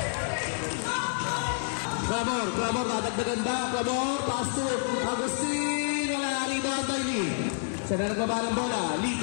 Clamor, dadagdagan ba? Clamor, pass to Agustin. Wala. Rebound by Lee. Sabi nagbaba ng bola. Lee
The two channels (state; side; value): silent; right; 59 dB below the other